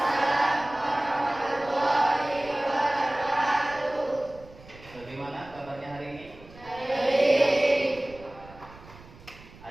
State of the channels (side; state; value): right; noise; rumble, 21 dB below the sound